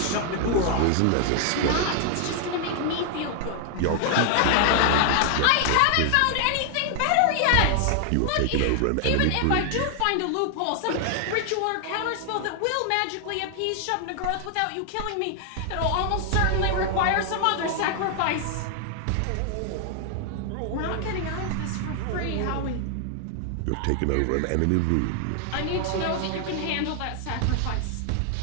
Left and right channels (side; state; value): both; different; correlation 0.00